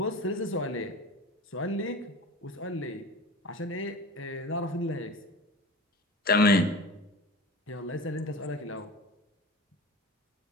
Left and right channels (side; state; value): both; normal; correlation 0.34